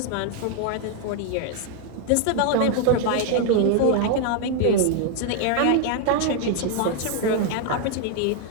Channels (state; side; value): different; both; correlation 0.00